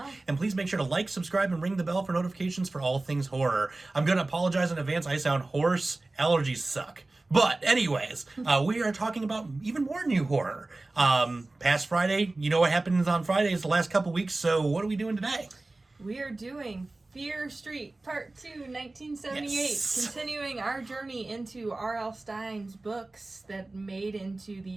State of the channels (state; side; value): quieter; left; 3.0 dB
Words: And please make sure to like, subscribe, and ring the bell for notifications for all things horror. I'm going to apologize in advance. I sound hoarse. Allergies suck. But anyways, we are talking about even more new horror. Past Friday, you know what happens on Fridays the last couple weeks, so what are we doing today? We are doing Fear Street Part 2, 1978, Yes. continuing our journey into R.L. Stine's books that made into